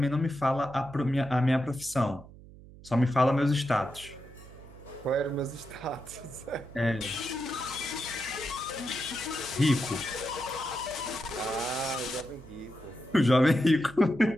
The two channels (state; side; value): noise; right; hum, 19 dB below the sound